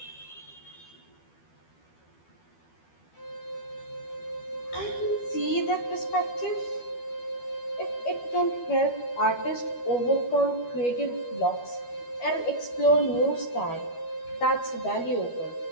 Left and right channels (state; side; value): late; right; 12 ms